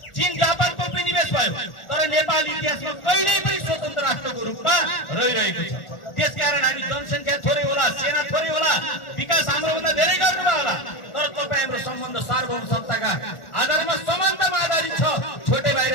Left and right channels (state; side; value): late; right; 1.4 ms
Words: चीन जापानको उपनिवेश भयो, तर नेपाल इतिहासमा कहिल्यै पनि स्वतन्त्र राष्ट्रको रूपमा रहिरहेको छ। त्यसकारण हामी जनसङ्ख्या थोरै होला, सेना थोरै होला, विकास हाम्रोभन्दा धेरै गर्नुभयो होला, तर तपाईँ हाम्रो सम्बन्ध सार्वभौम सत्ताका आधारमा समानतामा आधारित छ। छोटे भाइ र